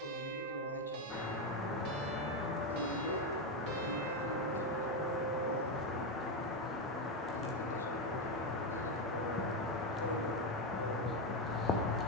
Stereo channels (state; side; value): normal; both; correlation 0.09